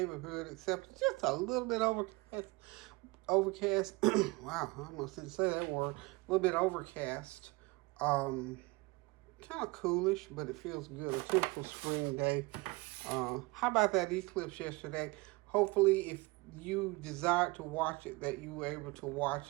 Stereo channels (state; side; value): quieter; left; 24.9 dB